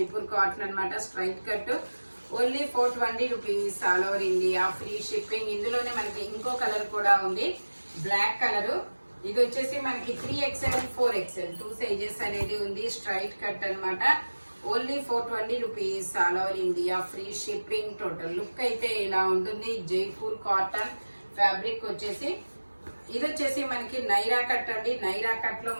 cotton అనమాట. Straight cut. Only 420 rupees all over India, free shipping. ఇందులోనే మనకి ఇంకో కలర్ కూడా ఉంది, బ్లాక్ కలర్. ఇది వచ్చేసి మనకి 3XL, 4XL 2 సైజెస్ అనేది ఉంది. స్ట్రైట్ కట్ అనమాట. Only 420 rupees all over India, free shipping. Total look అయితే ఇలా ఉంటుంది. జైపూర్ కాటన్ ఫ్యాబ్రిక్ వచ్చేసి. ఇది వచ్చేసి మనకి నైరా కట్ అండి. నైరా కట్ లో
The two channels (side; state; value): both; inverted; correlation -1.00